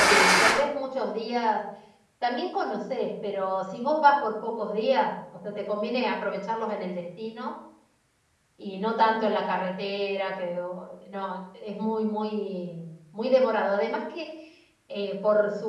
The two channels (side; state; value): both; identical; correlation 1.00